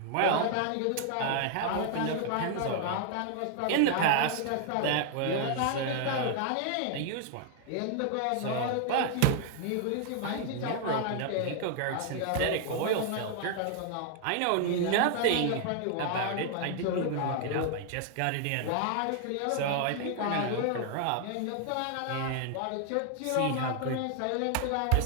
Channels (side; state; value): both; different; correlation 0.00